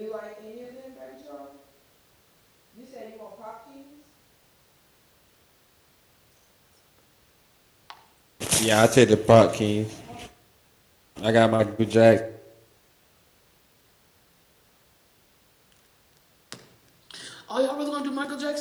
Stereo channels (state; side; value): identical; both; correlation 1.00